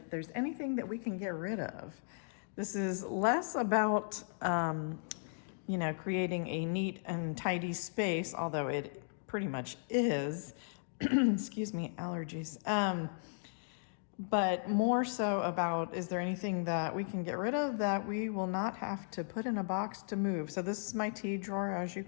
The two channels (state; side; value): silent; right; digital silence